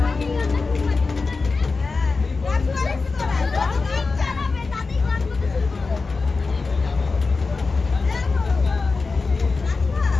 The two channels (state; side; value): quieter; right; 4.1 dB